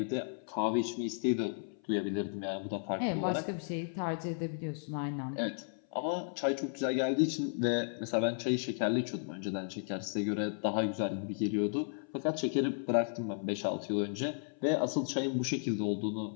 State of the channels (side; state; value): right; silent; 55 dB below the other